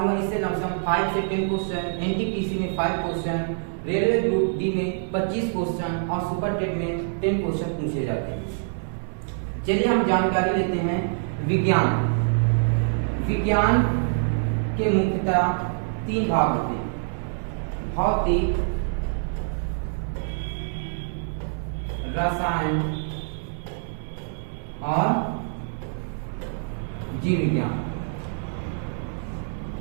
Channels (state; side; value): silent; left; digital silence